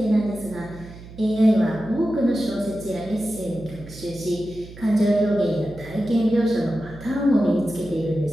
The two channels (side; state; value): right; noise; hum, 16 dB below the sound